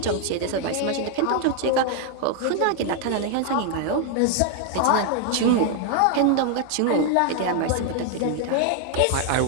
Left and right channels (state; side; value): different; both; correlation 0.00